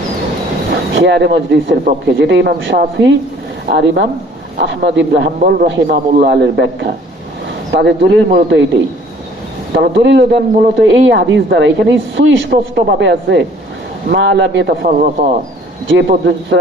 খিয়ারে মজলিসের পক্ষে, যেটা ইমাম শাফি আর ইমাম আহমদ ইবনে হাম্বল রাহিমাহুল্লাহ এর ব্যাখ্যা। তাদের দলিল মূলত এইটাই। তারা দলিল দেন মূলত এই হাদিস দ্বারা। এখানে সুস্পষ্ট ভাবে আছে মা লাম ইয়াতাফাররাকা যে পর্যন্ত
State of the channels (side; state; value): both; normal; correlation 0.55